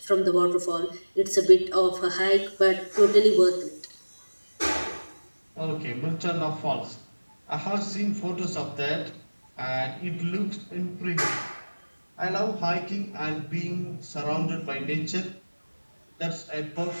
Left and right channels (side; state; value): both; inverted; correlation -1.00